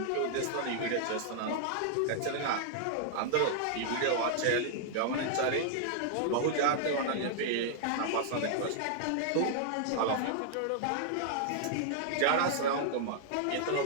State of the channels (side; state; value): both; different; correlation -0.01